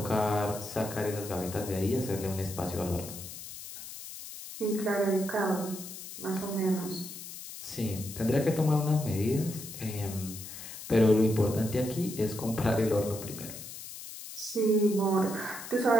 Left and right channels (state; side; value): noise; left; hiss, 11 dB below the sound